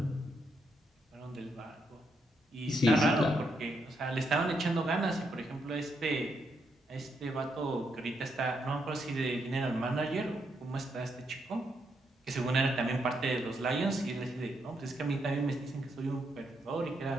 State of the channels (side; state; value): both; normal; correlation 0.78